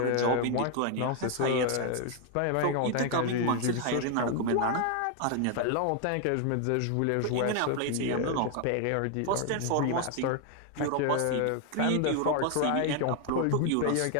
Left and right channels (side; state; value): both; different; correlation 0.01